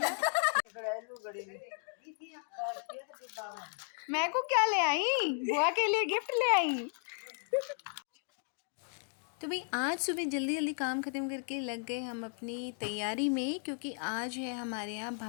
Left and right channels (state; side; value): silent; right; 55 dB below the other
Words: मैं को क्या ले आई? बुआ के लिए गिफ्ट ले आई। तो भाई आज सुबह जल्दी जल्दी काम ख़त्म करके लग गए हम अपनी तैयारी में, क्योंकि आज है हमारे यहाँ